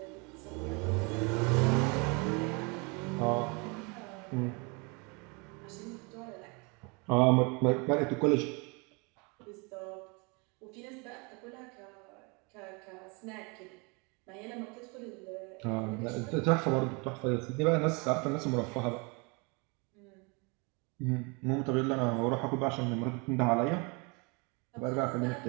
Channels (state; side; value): quieter; left; 30.8 dB